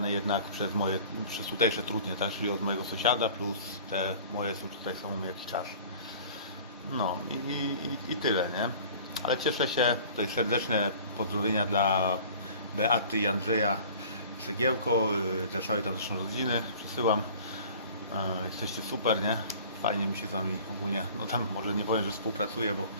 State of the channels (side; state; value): both; inverted; correlation -0.46